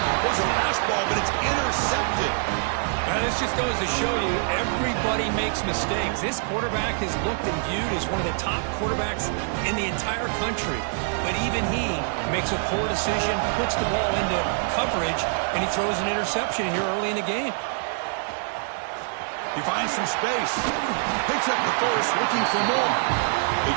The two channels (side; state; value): left; silent; 62 dB below the other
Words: There's a fastball, but it's intercepted. Now, this just goes to show you everybody makes mistakes. This quarterback is looked and viewed as one of the top quarterbacks in the entire country. But even he makes a poor decision, puts the ball into coverage, and he throws an interception here early in the game. He finds some space. Picks up the first, looking for more. They